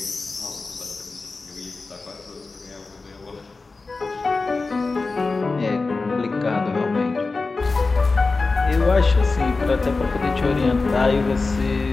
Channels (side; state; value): right; quieter; 3.8 dB